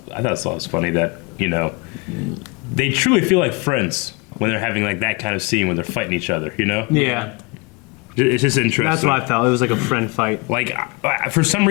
funny that, they truly feel like friends when they're having, like, that kind of scene when they're fighting each other, Yeah. It's just interesting. That's what I felt. It was like a friend fight. Like, for some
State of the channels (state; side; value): quieter; right; 28.8 dB